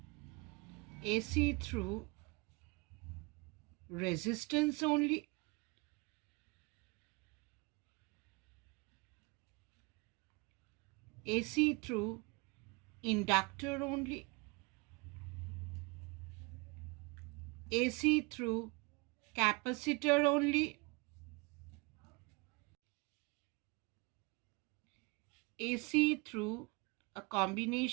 AC through resistance only, AC through inductor only, AC through capacitor only, AC through a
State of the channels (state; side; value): quieter; left; 28.1 dB